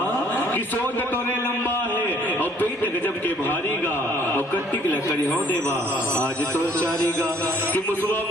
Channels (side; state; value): both; normal; correlation 0.61